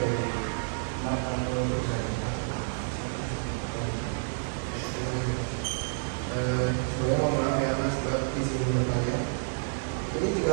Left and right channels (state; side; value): silent; left; digital silence